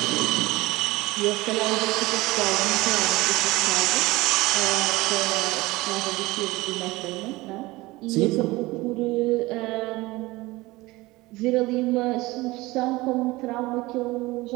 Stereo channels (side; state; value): left; quieter; 20.7 dB